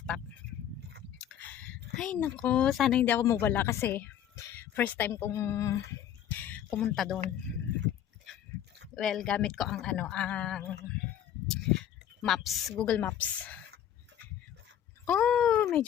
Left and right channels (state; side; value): quieter; right; 10.3 dB